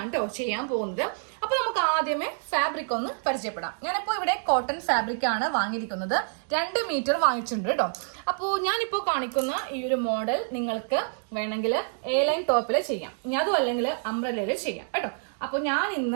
കേട്ടോ ചെയ്യാൻ പോകുന്നത്. അപ്പൊ നമുക്ക് ആദ്യമേ ഫാബ്രിക് ഒന്ന് പരിചയപ്പെടാം. ഞാനിപ്പോ ഇവിടെ കോട്ടൺ ഫാബ്രിക് ആണ് വാങ്ങിയിരിക്കുന്നത്. 2 മീറ്റർ വാങ്ങിച്ചിട്ടുണ്ട് കേട്ടോ. അപ്പോൾ ഞാനിപ്പോ കാണിക്കുന്ന ഈ ഒരു മോഡൽ നിങ്ങൾക്ക് വേണമെങ്കിൽ എ ലൈൻ ടോപ്പിൽ ചെയ്യാം, അതും അല്ലെങ്കിൽ അംബ്രല്ലയിൽ ചെയ്യാം കേട്ടോ. അപ്പൊ ഞാൻ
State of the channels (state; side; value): silent; left; 60 dB below the other